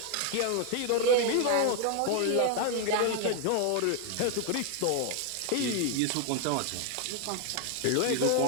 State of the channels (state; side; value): different; both; correlation 0.00